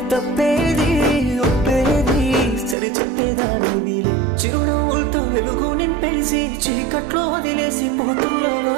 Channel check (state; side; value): drops out; left; at 2.8 s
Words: తప్పేది ఒప్పేది సరి చెప్పేదాని వీలే. చిరునవ్వులతో వెలుగు నింపేసి చీకట్లో వదిలేసి పోతున్నావా.